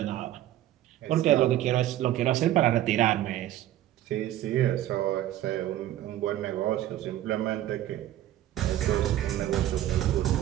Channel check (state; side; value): quieter; left; 13.3 dB